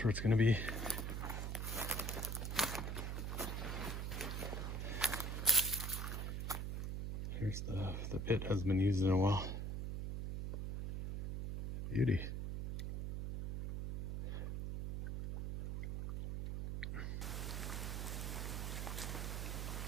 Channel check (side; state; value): right; noise; hum, 2 dB below the sound